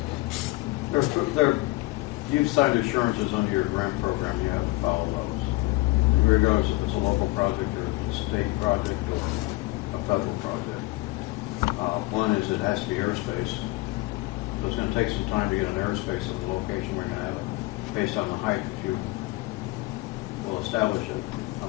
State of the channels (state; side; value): quieter; right; 20.9 dB